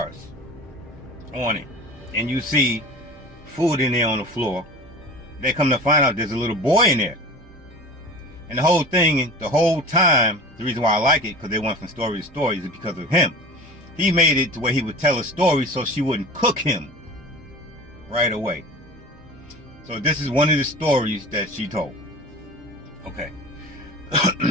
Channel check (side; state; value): both; normal; correlation 0.37